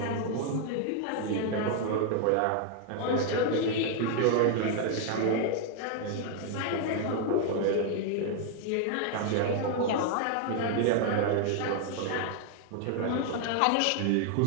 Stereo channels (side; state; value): both; different; correlation 0.00